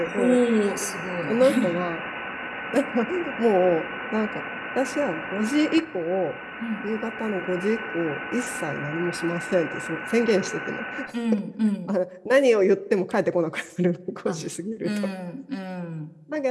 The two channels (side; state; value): both; identical; correlation 1.00